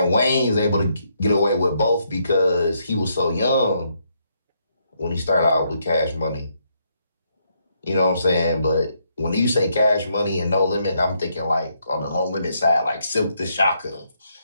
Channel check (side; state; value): both; inverted; correlation -0.76